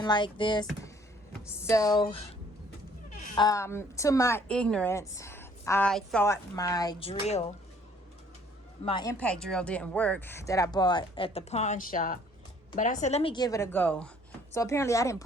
like this. So to my ignorance, I thought my impact drill didn't work that I bought at the pawn shop. But I said, let me give it a go. So apparently I didn't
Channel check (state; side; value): normal; both; correlation 0.59